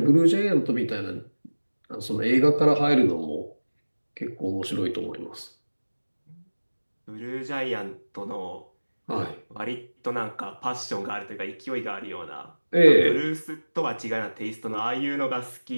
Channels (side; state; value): both; inverted; correlation -1.00